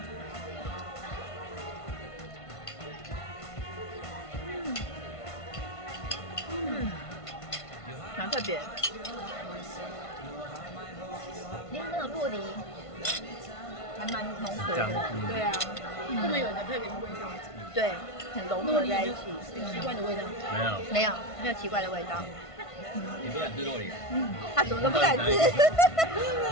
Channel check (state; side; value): late; right; 1.5 ms